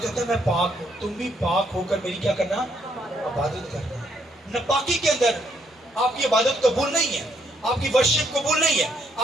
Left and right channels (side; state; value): both; normal; correlation 0.72